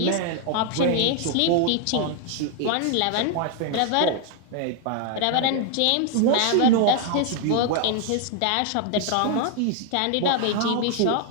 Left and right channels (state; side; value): different; both; correlation 0.00